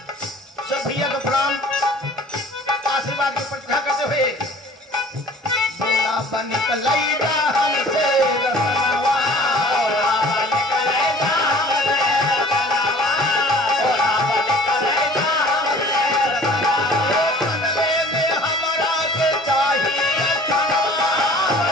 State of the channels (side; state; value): both; normal; correlation 0.49